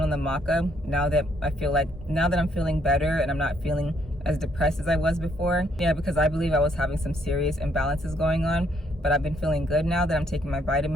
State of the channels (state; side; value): normal; both; correlation 0.70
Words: on the maca now that I'm feeling better and I'm not feeling as depressed as I was before. Yeah, because I believe I was having some serious imbalances going on, but I've been feeling good now that I'm taking my